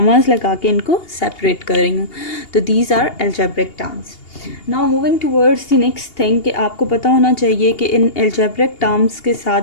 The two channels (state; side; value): late; right; 2.8 ms